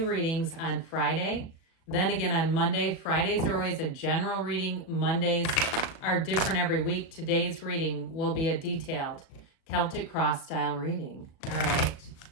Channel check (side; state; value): right; late; 37 ms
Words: readings on Friday, then again on Monday. Fridays are always a general reading. Mondays are different every week. Today's reading will be a detailed Celtic cross style reading. All right.